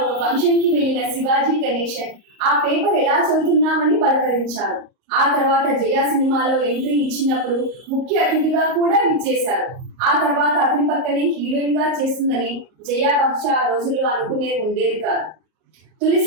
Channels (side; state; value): left; late; 38 ms